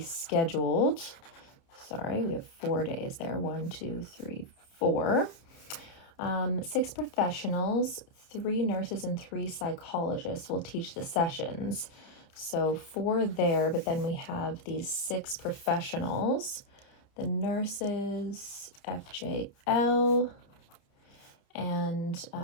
scheduled. Sorry, we have 4 days there, 1, 2, 3, 4. 6 professionals, 3 nurses, and 3 psychologists will teach the sessions. So 4 there, but then we have these 6 professionals, the nurses, FJL, and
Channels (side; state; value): right; late; 30 ms